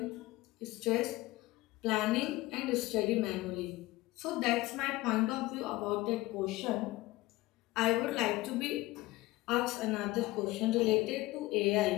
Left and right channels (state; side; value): quieter; right; 19.3 dB